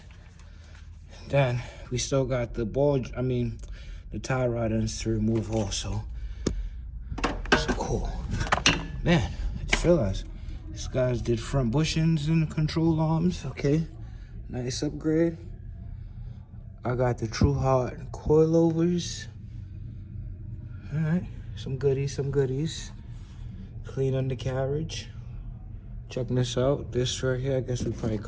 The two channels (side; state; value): both; identical; correlation 1.00